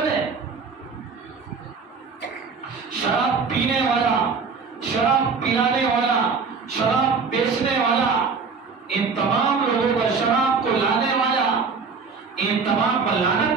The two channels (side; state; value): left; quieter; 5.0 dB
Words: شراب پینے والا، شراب پلانے والا، شراب بیچنے والا، ان تمام لوگوں کا، شراب کو لانے والا، ان تمام پر لعنت